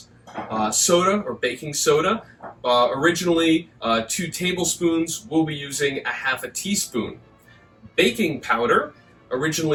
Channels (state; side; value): identical; both; correlation 1.00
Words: Soda or baking soda, originally 2 tablespoons. We'll be using 1/2 teaspoon. Baking powder,